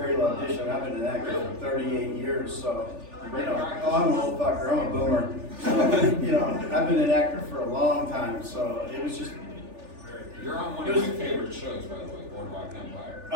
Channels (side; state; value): left; late; 3.4 ms